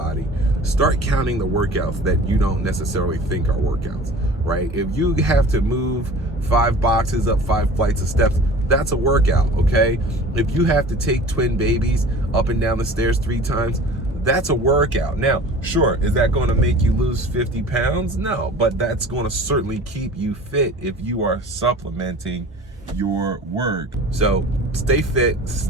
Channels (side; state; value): both; normal; correlation 0.42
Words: Start counting the workouts that you don't necessarily think are workouts, right? If you have to move 5 boxes up 5 flights of steps, that's a workout, okay? If you have to take twin babies up and down the stairs 3 times, that's a workout. Now, sure, is that going to make you lose 50 pounds? No, but that's going to certainly keep you fit if you are supplementing your work. So stay fit,